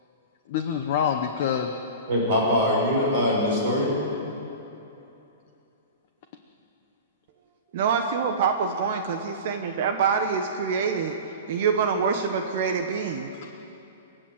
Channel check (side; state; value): both; inverted; correlation -0.32